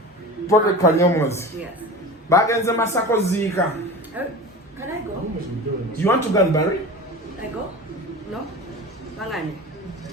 Prophet Kanyomozi. Yes. Bagenze masako ziika. Can I go? You want to go and bury? I go? No? Bangani.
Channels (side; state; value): both; normal; correlation 0.33